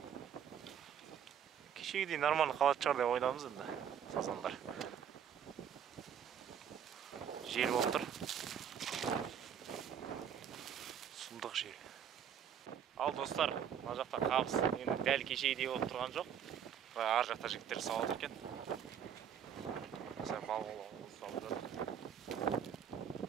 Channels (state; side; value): quieter; left; 8.6 dB